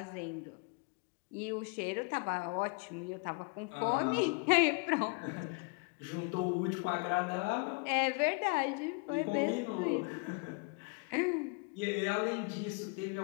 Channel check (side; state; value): right; quieter; 31.9 dB